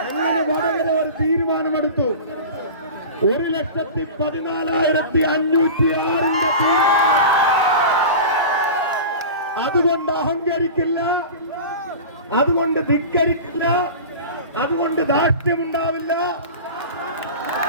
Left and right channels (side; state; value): both; inverted; correlation -0.33